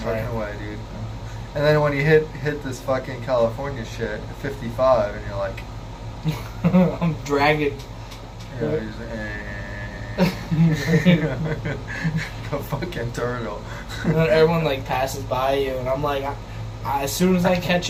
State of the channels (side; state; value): both; identical; correlation 1.00